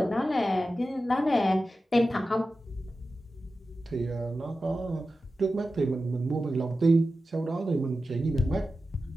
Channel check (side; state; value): both; normal; correlation 0.93